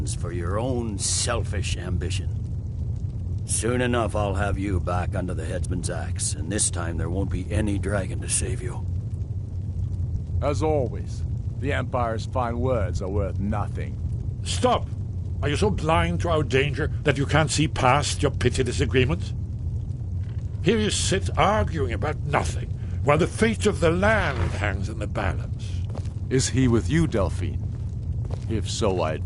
for your own selfish ambition. Soon enough, I'll have you back under the headsman's axe, and this time there won't be any dragon to save you. As always, the Empire's fine words are worth nothing. Stop! Are you so blind to our danger that you can't see past your petty disagreements? Here you sit arguing about nothing, while the fate of the land hangs in the balance. Is he with you, Delphine? If so, I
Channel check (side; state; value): both; identical; correlation 1.00